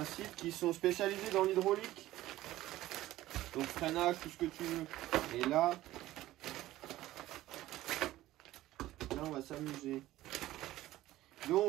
site qui sont spécialisés dans l'hydraulique. Donc freinage, tout ce que tu veux. Et là on va s'amuser.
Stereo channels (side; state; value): left; quieter; 15.6 dB